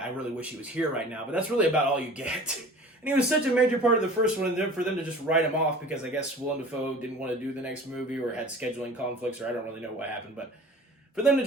really wish he was here right now. But that's really about all you get. And he was such a major part of the first one, and then for them to just write him off because I guess Willem Dafoe didn't want to do the next movie or had scheduling conflicts, or I don't really know what happened, but for them to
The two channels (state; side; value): normal; both; correlation 0.43